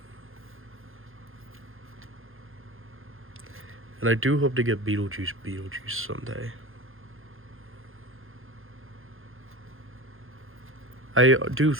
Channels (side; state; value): left; late; 0.60 ms